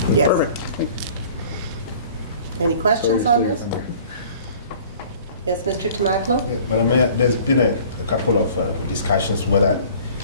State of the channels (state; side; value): inverted; both; correlation -0.49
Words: Yes. Perfect. Any questions on this? Yes, Mr. Tomaklo? Yeah, Madam Mayor, there's been a couple of discussions whether